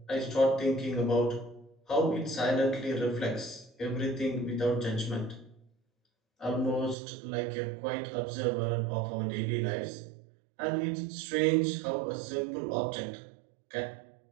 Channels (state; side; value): drops out; left; at 7.0 s